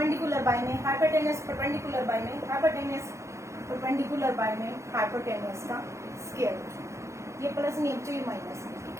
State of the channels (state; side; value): late; left; 0.14 ms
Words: बाय में हाइपोटेनस, परपेंडिकुलर बाय में हाइपोटेनस, परपेंडिकुलर बाय में हाइपोटेनस का स्क्वायर। ये प्लस नहीं है, ये माइनस है।